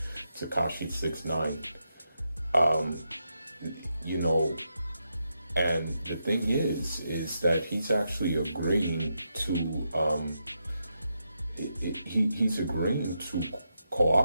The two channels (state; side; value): inverted; both; correlation -0.84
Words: 6ix9ine. You know, and the thing is that he's actually agreeing to he's agreeing to